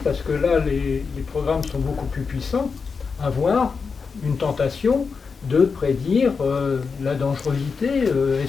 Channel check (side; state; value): right; quieter; 5.2 dB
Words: parce que là les programmes sont beaucoup plus puissants, à avoir une tentation de prédire la dangerosité.